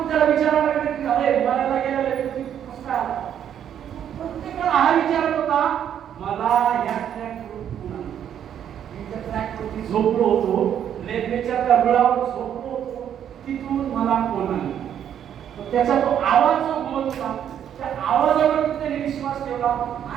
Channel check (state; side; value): quieter; left; 9.5 dB